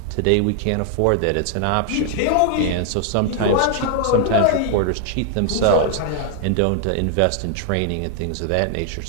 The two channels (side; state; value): both; different; correlation 0.00